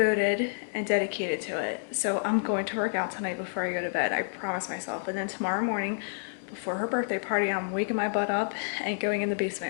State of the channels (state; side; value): silent; right; digital silence